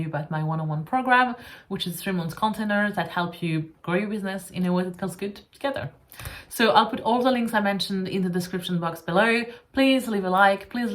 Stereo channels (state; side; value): identical; both; correlation 1.00